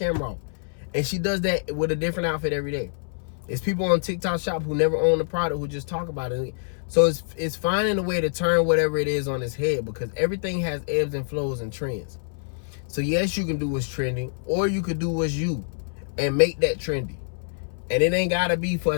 off. And she does that with a different outfit every day. It's people on TikTok Shop who never own the product who just talk about it. So it's finding a way to turn whatever it is on its head, because everything has ebbs and flows and trends. So yes, you can do what's trending, or you could do what's you and make that trendy. And it ain't gotta be for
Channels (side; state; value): right; silent; 61 dB below the other